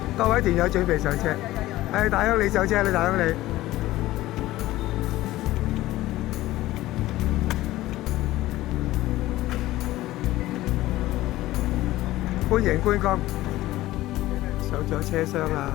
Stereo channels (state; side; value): quieter; right; 16.4 dB